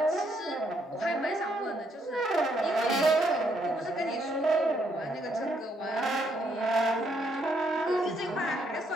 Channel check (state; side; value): normal; both; correlation 0.73